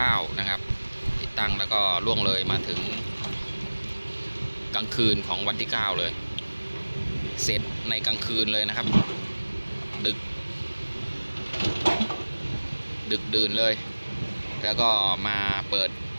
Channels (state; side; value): inverted; both; correlation -1.00